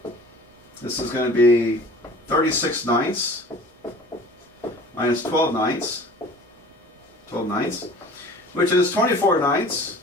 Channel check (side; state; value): both; normal; correlation 0.44